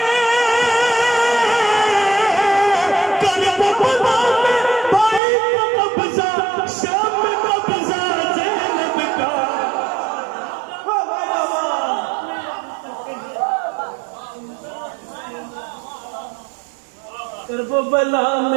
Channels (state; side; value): drops out; left; at 5.2 s